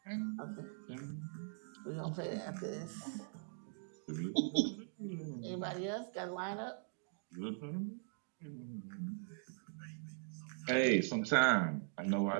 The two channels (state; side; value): silent; left; digital silence